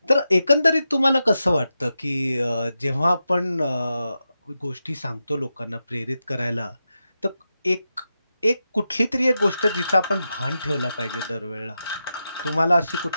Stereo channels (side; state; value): both; inverted; correlation -0.89